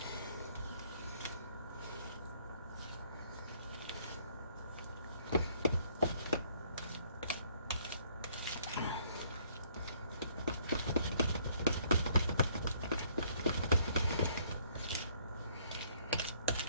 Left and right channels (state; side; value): inverted; both; correlation -0.63